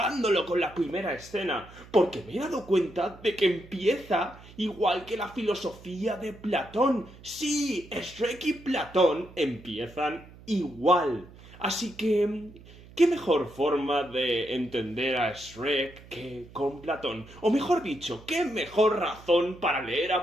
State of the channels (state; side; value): noise; right; hum, 20 dB below the sound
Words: con la primera escena, porque me he dado cuenta de que empieza igual que la filosofía de Platón. Sí, Shrek y Platón empiezan igual. Así que, ¿qué mejor forma de entender a Shrek que con Platón? O mejor dicho, ¿qué mejor razón para leer